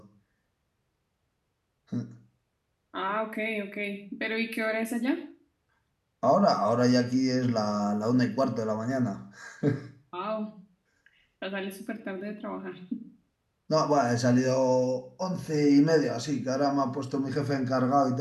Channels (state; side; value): identical; both; correlation 1.00